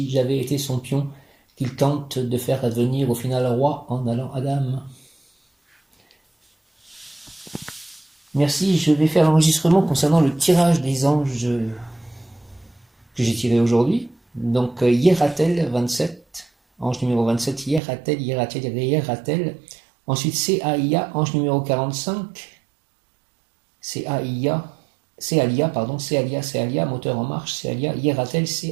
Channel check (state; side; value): drops out; left; at 17.8 s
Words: j'avais été son pion qu'il tente de faire advenir au final roi en allant à l'âme. Merci, je vais faire l'enregistrement concernant le tirage des anges que j'ai tiré aujourd'hui. Donc Hieratel 27, ange numéro 27, Hieratel. Ensuite Céalia, ange numéro 45, Céalia, moteur en marche, Céalia, Hieratel,